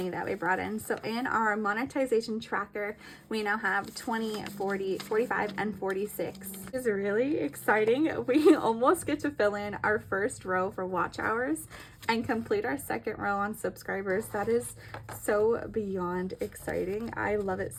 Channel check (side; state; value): both; identical; correlation 1.00